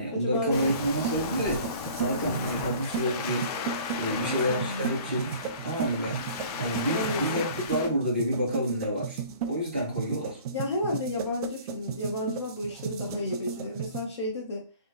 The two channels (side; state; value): both; inverted; correlation -0.48